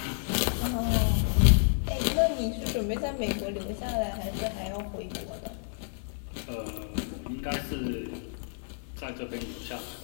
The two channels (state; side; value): silent; right; digital silence